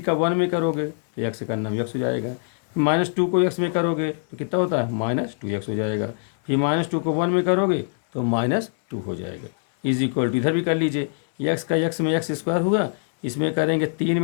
1 में करोगे तो x का नाम x हो जाएगा, -2 को x में करोगे तो कितना होता है? -2x हो जाएगा, फिर -2 को 1 में करोगे तो -2 हो जाएगा, इज इक्वल टू, इधर भी कर लीजिए, x का x में x² हुआ, इसमें करेंगे 3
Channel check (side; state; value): right; silent; 63 dB below the other